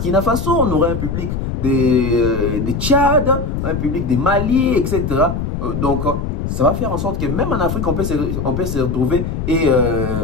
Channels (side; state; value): left; noise; rumble, 3 dB below the sound